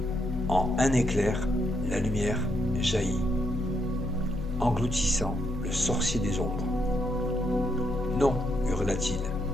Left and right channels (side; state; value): both; normal; correlation 0.77